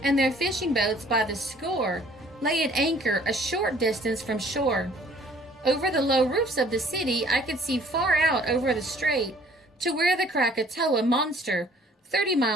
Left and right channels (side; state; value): both; normal; correlation 0.56